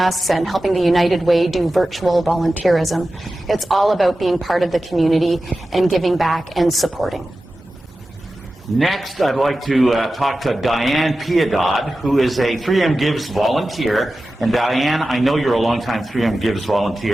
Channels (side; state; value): both; normal; correlation 0.94